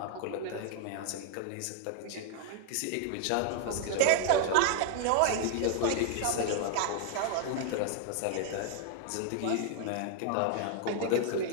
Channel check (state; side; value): different; both; correlation 0.00